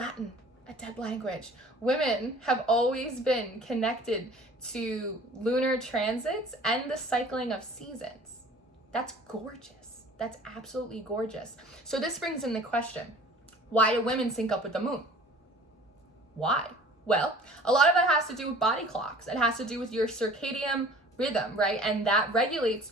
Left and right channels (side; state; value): both; normal; correlation 0.48